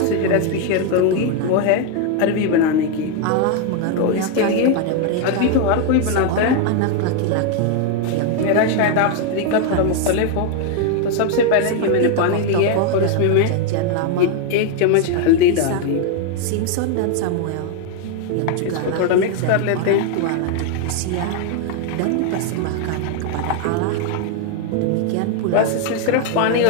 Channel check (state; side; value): different; both; correlation 0.01